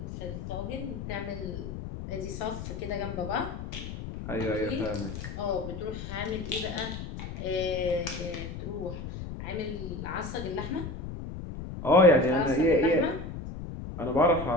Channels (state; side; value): noise; left; rumble, 8 dB below the sound